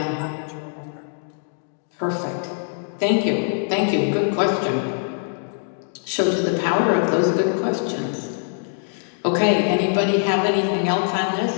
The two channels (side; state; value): right; silent; digital silence